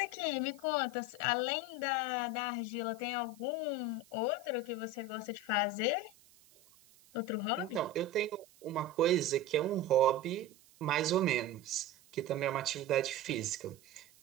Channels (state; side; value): noise; right; hiss, 27 dB below the sound